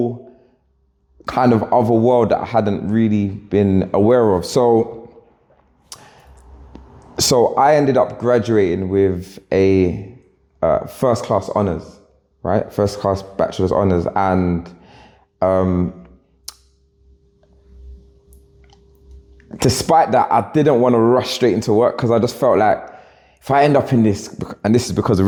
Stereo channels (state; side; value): identical; both; correlation 1.00